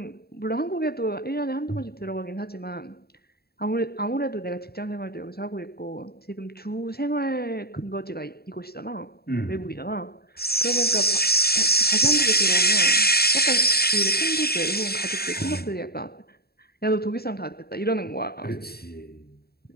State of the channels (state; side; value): late; right; 0.46 ms